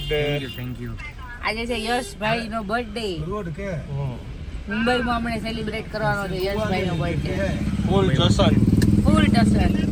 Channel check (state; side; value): identical; both; correlation 1.00